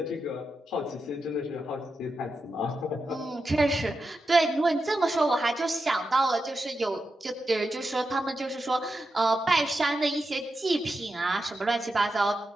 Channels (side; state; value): both; normal; correlation 0.88